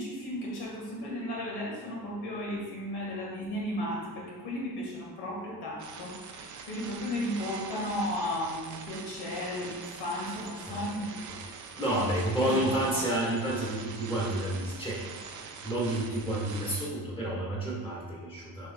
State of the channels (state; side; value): normal; both; correlation 0.36